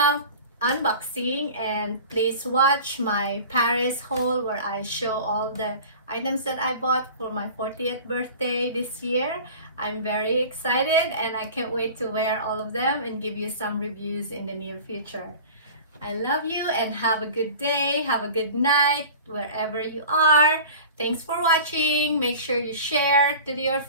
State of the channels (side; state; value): both; inverted; correlation -0.39